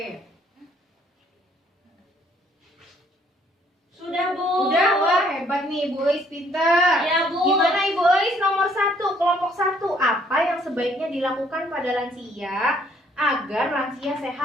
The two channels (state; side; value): normal; both; correlation 0.64